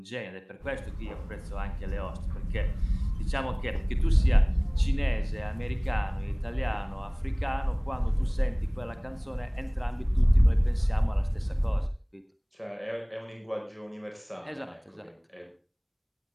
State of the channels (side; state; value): both; identical; correlation 1.00